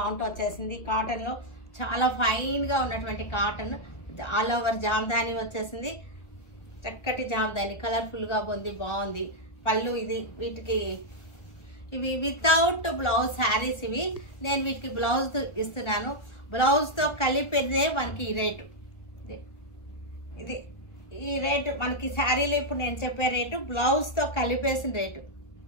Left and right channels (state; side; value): late; right; 1.4 ms